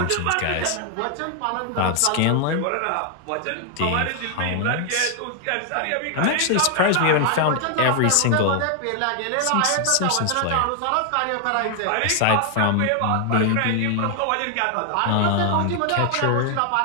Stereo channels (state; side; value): different; both; correlation 0.00